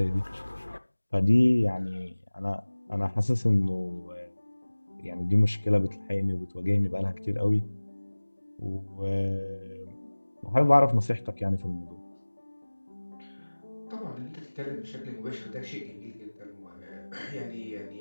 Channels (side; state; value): both; inverted; correlation -1.00